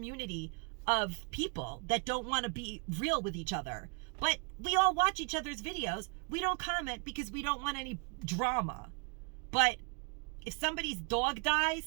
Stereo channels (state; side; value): quieter; left; 34.6 dB